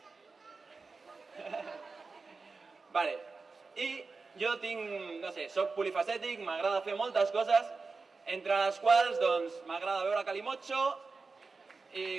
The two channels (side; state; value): left; quieter; 4.2 dB